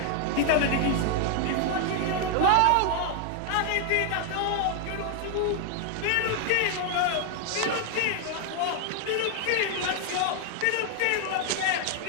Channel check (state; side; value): different; both; correlation 0.00